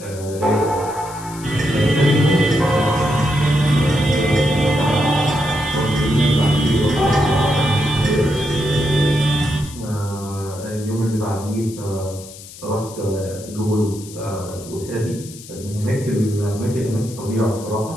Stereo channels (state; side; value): noise; left; hiss, 17 dB below the sound